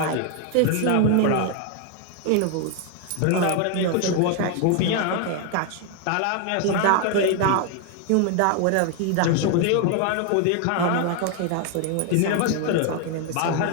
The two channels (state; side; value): different; both; correlation 0.00